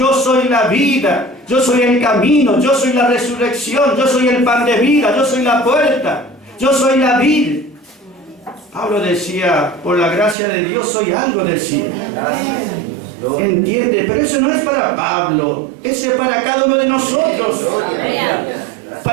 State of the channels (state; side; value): drops out; left; at 10.4 s